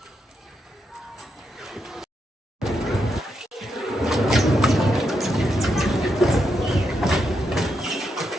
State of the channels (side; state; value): both; normal; correlation 0.82